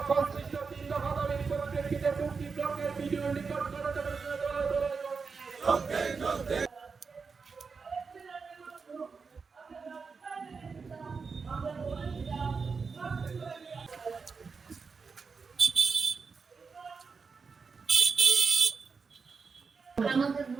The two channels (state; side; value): quieter; left; 5.0 dB